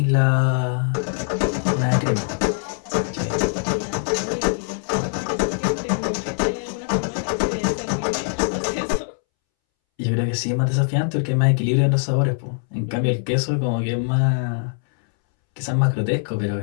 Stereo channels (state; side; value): silent; right; 63 dB below the other